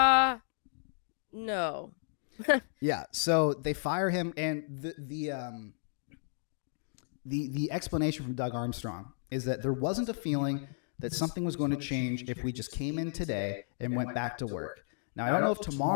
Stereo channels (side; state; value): right; silent; digital silence